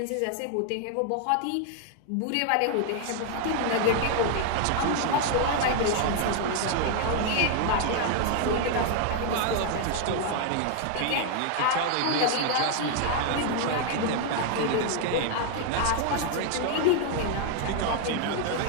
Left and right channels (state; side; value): different; both; correlation 0.00